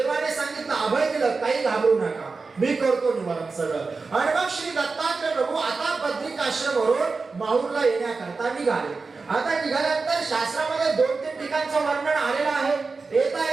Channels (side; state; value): left; quieter; 4.3 dB